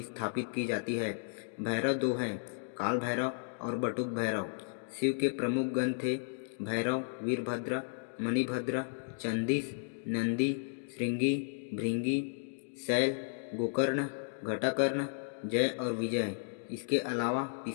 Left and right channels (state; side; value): silent; right; digital silence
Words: स्थापित की जाती है। भैरव दो हैं, काल भैरव और बटुक भैरव। शिव के प्रमुख गण थे भैरव, वीरभद्र, मणिभद्र, चंदीस, नंदी, श्रृंगी, भृंगी, शैल, गोकर्ण, घटाकर्ण, जय और विजय। इसके अलावा